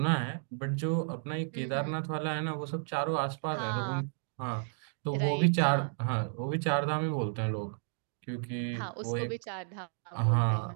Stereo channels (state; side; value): silent; left; digital silence